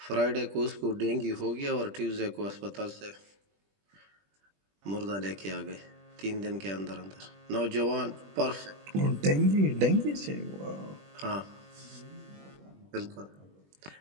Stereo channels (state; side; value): late; left; 20 ms